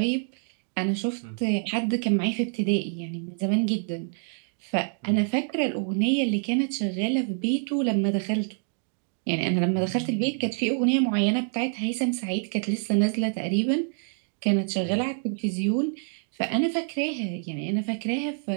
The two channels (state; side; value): silent; left; 55 dB below the other